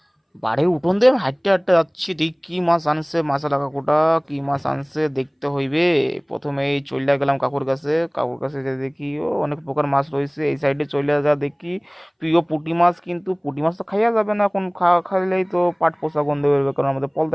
বাড়ির উঠোন দিয়ে আমি হাঁটতে হাঁটতে যাচ্ছি, দেখি কি মাছ আনছে মাছালা কাকুটা। কি মাছ আনছে দেখতে হইবে। প্রথমে এই চলে গেলাম কাকুর কাছে। কাকুর কাছে যে দেখি ও অনেক প্রকার মাছ রয়েছে। এই সাইডে চলে যা দেখি প্রিয় পুঁটি মাছ, কিন্তু পুঁটি মাছ তো খাইয়া যাবে না এখন। খাইলেই তো পাট পচা গন্ধ বেরোবে, কারণ আমাদের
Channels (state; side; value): identical; both; correlation 1.00